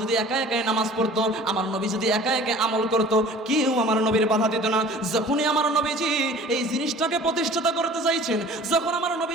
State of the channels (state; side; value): normal; both; correlation 0.46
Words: যদি একা একাই নামাজ পড়তো, আমার নবী যদি একা একা আমল করতো, কেউ আমার নবীর বাধা দিত না। যখনই আমার নবীজি এই জিনিসটাকে প্রতিষ্ঠাতা করতে চাইছেন, যখন আমার